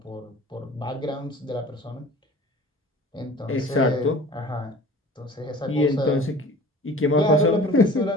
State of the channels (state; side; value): normal; both; correlation 0.44